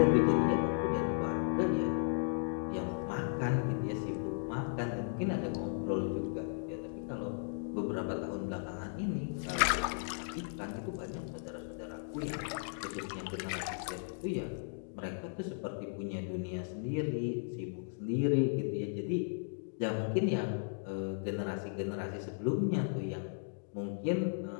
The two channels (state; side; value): silent; right; digital silence